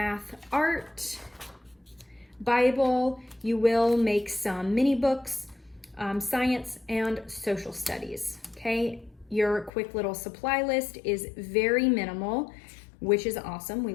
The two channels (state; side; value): drops out; right; at 9.7 s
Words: art, Bible. You will make some mini books, science, and social studies. Okay, your quick little supply list is very minimal, which is awesome.